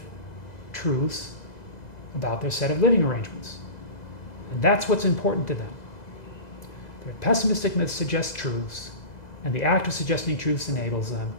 truths about their set of living arrangements. And that's what's important to them. Their pessimistic myths suggest truths, and the act of suggesting truths enables them.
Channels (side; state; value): right; late; 2.0 ms